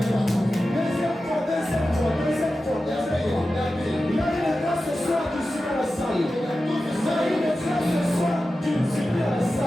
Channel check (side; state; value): both; normal; correlation 0.93